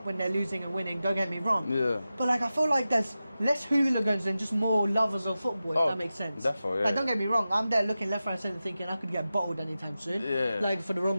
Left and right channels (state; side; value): inverted; both; correlation -0.93